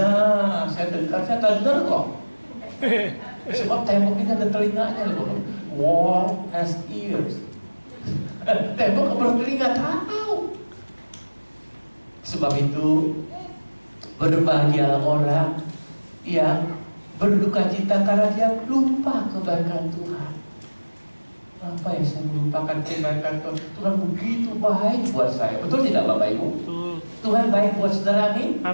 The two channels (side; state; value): both; inverted; correlation -1.00